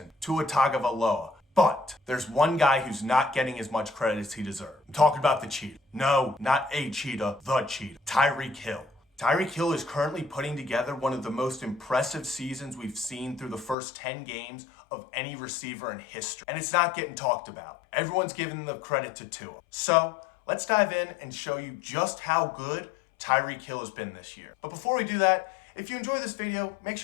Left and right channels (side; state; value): right; drops out; at 13.8 s